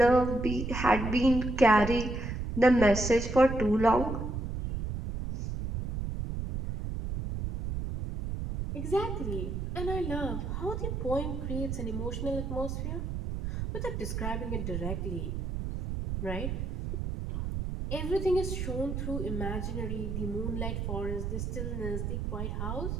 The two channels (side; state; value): right; noise; rumble, 3 dB below the sound